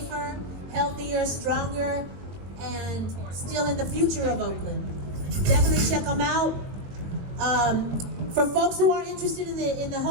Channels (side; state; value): left; late; 21 ms